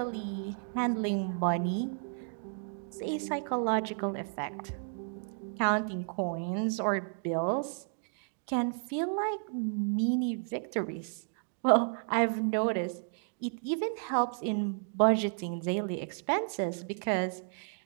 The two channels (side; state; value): left; silent; 56 dB below the other